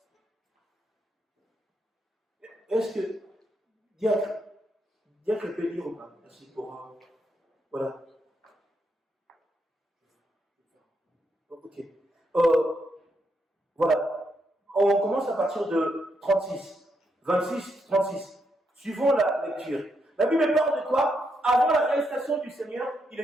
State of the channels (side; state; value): both; normal; correlation 0.80